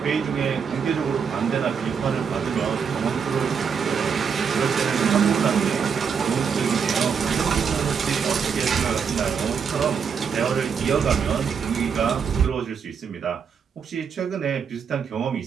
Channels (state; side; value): quieter; left; 6.5 dB